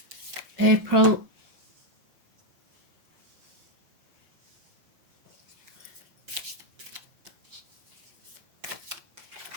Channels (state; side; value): late; left; 5.9 ms